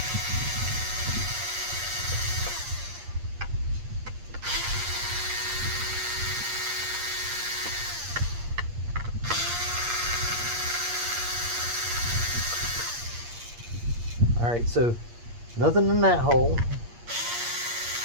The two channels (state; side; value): late; left; 8.5 ms